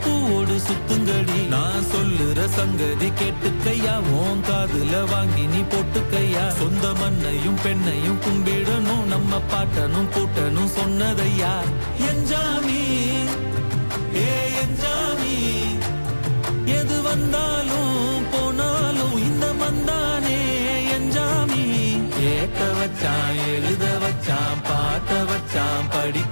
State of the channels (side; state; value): both; inverted; correlation -1.00